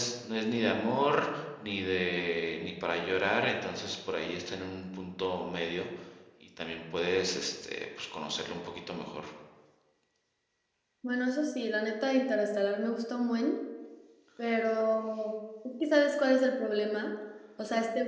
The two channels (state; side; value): identical; both; correlation 1.00